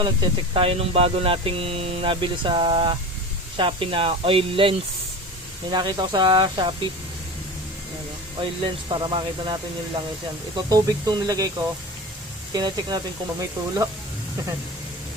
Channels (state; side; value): normal; both; correlation 0.32